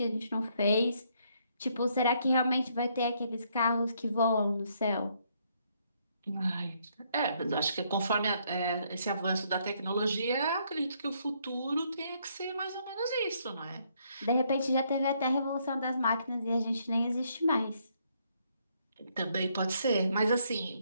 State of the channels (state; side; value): inverted; both; correlation -0.71